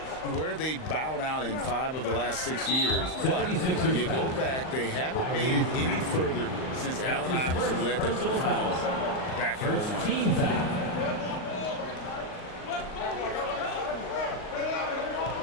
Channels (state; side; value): late; right; 38 ms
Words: Where they bowed out in 5 of the last 6 years. But 76ers you go back, they haven't made it any further since Allen Iverson led them to the finals back in First 01. team foul.